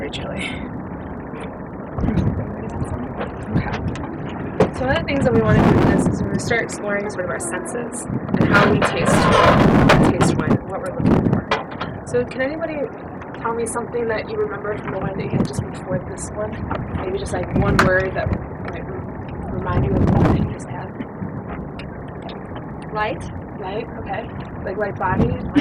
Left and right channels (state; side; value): identical; both; correlation 1.00